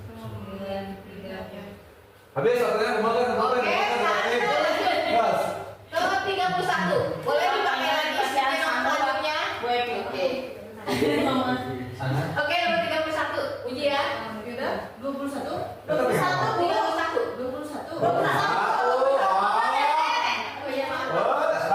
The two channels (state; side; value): identical; both; correlation 1.00